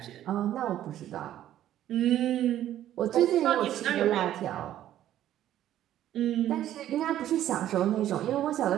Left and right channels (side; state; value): left; quieter; 12.2 dB